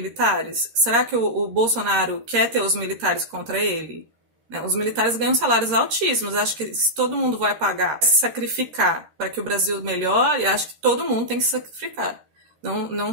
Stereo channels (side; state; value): left; late; 13 ms